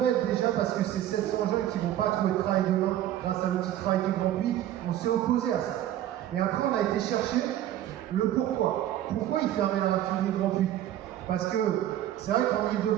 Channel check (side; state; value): left; quieter; 12.4 dB